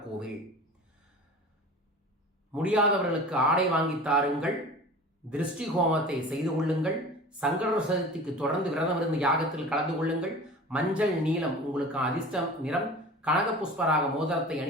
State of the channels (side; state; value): both; normal; correlation 0.38